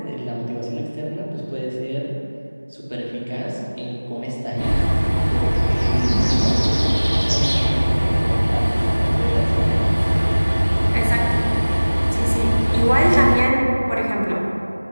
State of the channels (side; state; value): both; inverted; correlation -1.00